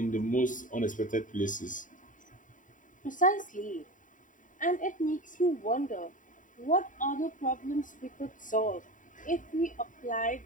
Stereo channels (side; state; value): right; late; 0.38 ms